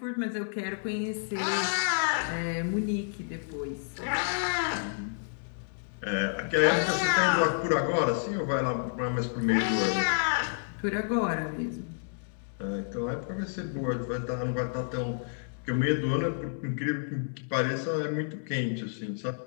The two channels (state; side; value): silent; right; digital silence